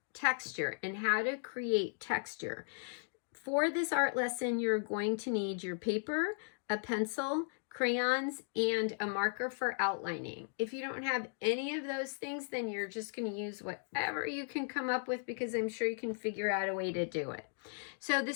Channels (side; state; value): right; silent; digital silence